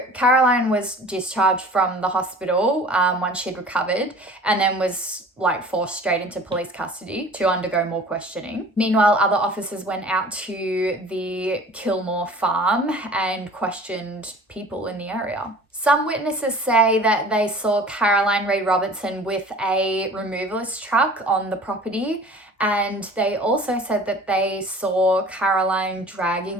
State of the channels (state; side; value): normal; both; correlation 0.45